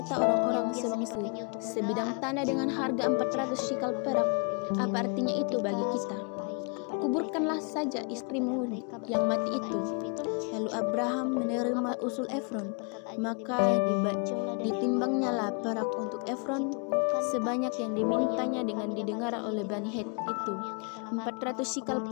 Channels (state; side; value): quieter; right; 36.8 dB